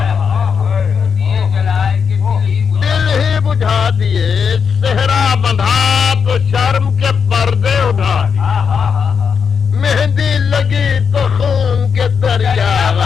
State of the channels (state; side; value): quieter; right; 6.4 dB